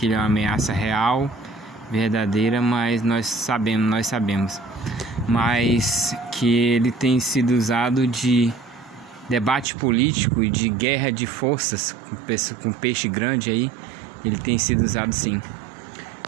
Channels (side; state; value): left; drops out; at 9.7 s